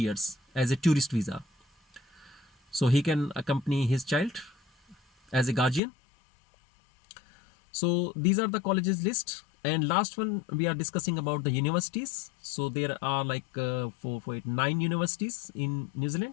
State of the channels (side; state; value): right; drops out; at 5.8 s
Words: as a tourist visa, so he can accompany his child as a guardian. So these are the colleges list. And last one, we are discussing about the universities. So there are like 9 universities in New